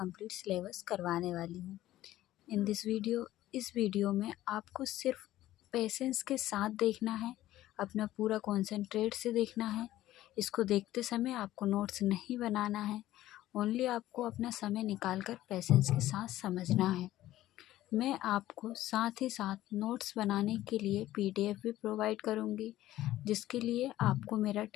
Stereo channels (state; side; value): quieter; right; 14.6 dB